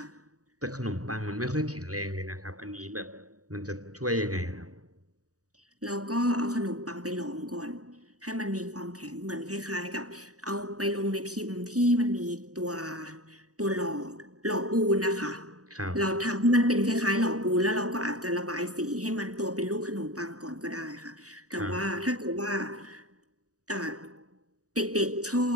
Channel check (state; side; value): late; left; 0.66 ms